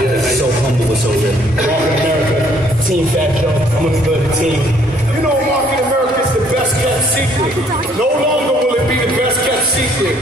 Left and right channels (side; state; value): both; normal; correlation 0.63